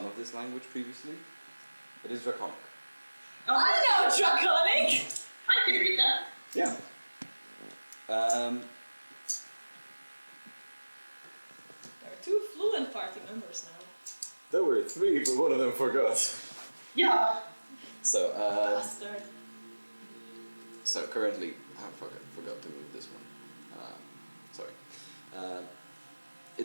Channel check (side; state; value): both; inverted; correlation -1.00